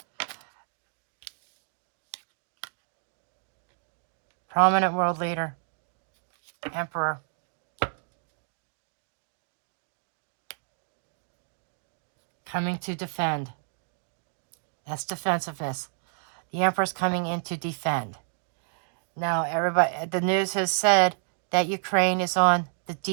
Prominent world leader, emperor. coming to defend. That's defensiveness. The Emperor's coming in to defend. Now, everybody, the news has said that Ukraine is on the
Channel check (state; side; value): silent; left; digital silence